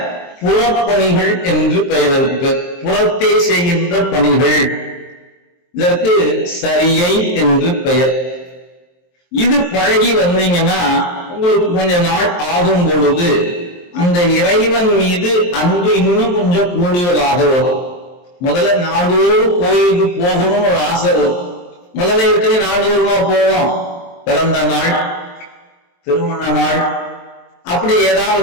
புறப்பணிகள் என்று பெயர் இருக்கு. புறத்தே செய்கின்ற பணிகள், இதற்கு சரியை என்று பெயர். இது பழகி வந்தீங்கன்னா உங்களுக்கு கொஞ்ச நாள் ஆகும் பொழுது அந்த இறைவன் மீது அன்பு இன்னும் கொஞ்சம் கூடுதலாக வரும். முதல்ல நாள்தோறும் கோயிலுக்கு போகணும் ஒரு ஆசை வரும். முதல்ல எப்படி நாள்தோறுமா போவோம்? பிறந்த நாள், திருமண நாள், அப்படி ஏதாவது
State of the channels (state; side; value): late; right; 23 ms